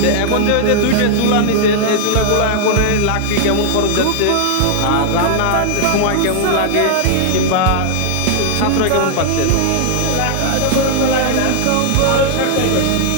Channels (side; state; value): both; different; correlation 0.00